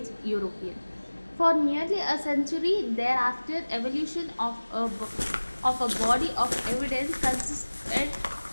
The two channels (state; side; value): inverted; both; correlation -1.00